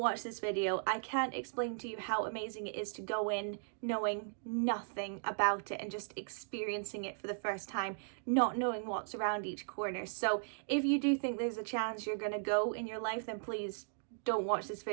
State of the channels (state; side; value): silent; left; digital silence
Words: this video. I can't explain to you how amazing it is to go in knowing nothing about it and just experiencing it for the first time, not knowing what's around each corner. So if you do think there's a chance you're going to go in your life, then please don't watch this